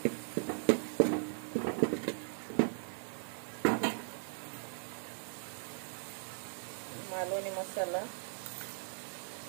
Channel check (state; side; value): silent; left; 52 dB below the other